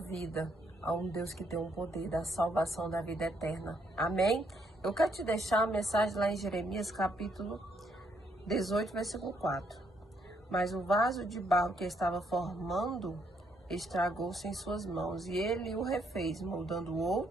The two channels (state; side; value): normal; both; correlation 0.73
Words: a um Deus que tem um poder da salvação da vida eterna. Amém? Eu quero te deixar uma mensagem lá em Jeremias, capítulo 18, versículo 4. Mas o vaso de barro que estava formando estragou-se em suas mãos, e ele o refez, moldando